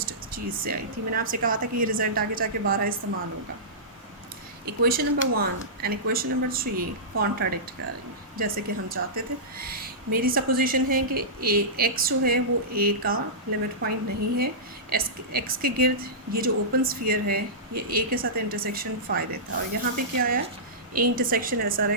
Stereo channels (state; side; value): normal; both; correlation -0.17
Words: चीज़ से आई थी। मैंने आपसे कहा था कि ये रिज़ल्ट आगे जाके 12 इस्तेमाल होगा। Equation number 1 and equation number 3 contradict कर रही हैं जैसे कि हम चाहते थे। मेरी सपोजिशन है कि ए एक्स जो है वो ए का लिमिट पॉइंट नहीं है, एक्स के गिर्द ये जो ओपन स्फीयर है ये ए के साथ इंटरसेक्शन फ़ाई देता है, और यहाँ पे क्या आया, A intersection S R